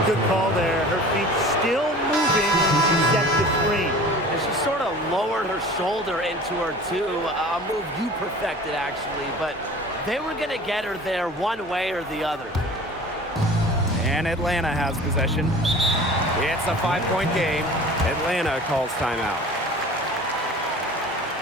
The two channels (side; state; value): both; normal; correlation 0.42